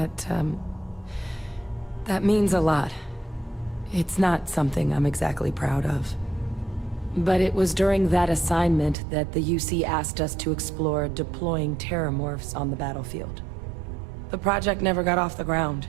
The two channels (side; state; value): left; drops out; at 9.0 s